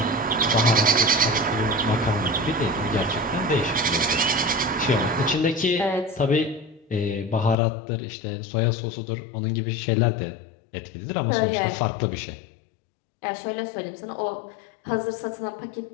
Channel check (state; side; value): drops out; right; at 7.6 s